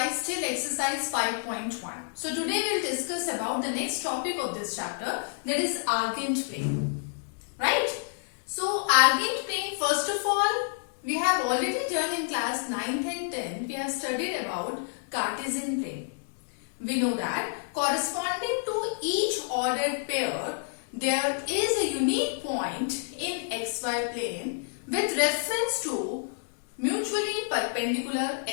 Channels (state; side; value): silent; right; digital silence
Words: till exercise 5.1. So today we'll discuss about the next topic of this chapter, that is argent plane. Right? So argent plane, first of all, we have already done in class 9th and 10th, we have studied about Cartesian plane. We know that corresponding to each ordered pair, there is a unique point in xy plane with reference to mutually perpendicular